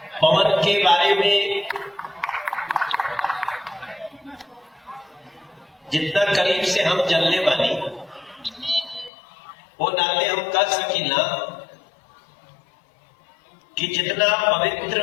पवन के बारे में जितना करीब से हम जलने वाली वो नाते हम कर सकी ना कि जितना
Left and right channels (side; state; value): right; drops out; at 9.1 s